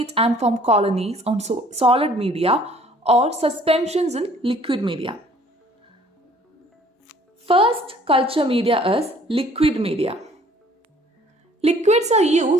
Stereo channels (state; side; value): normal; both; correlation 0.56